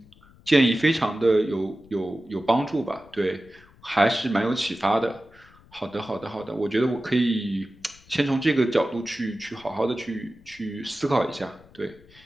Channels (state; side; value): noise; left; rumble, 26 dB below the sound